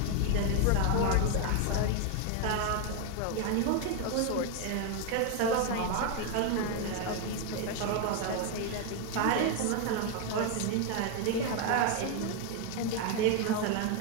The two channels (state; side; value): different; both; correlation 0.01